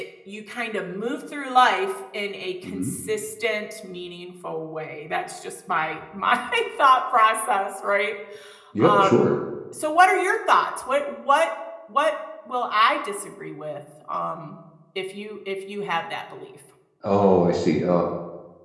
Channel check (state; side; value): identical; both; correlation 1.00